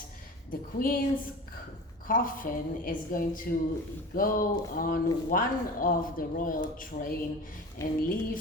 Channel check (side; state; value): both; normal; correlation 0.35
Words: the Queen's coffin is going to go on one of the royal train and leave